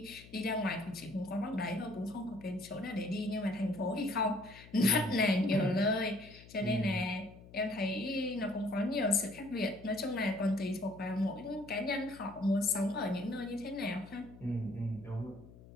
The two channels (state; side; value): noise; left; hum, 20 dB below the sound